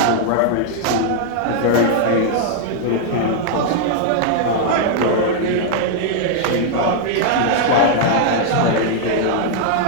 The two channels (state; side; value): different; both; correlation -0.01